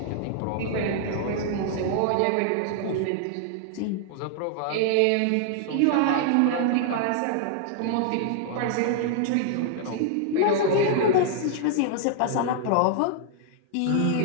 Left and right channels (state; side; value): different; both; correlation 0.00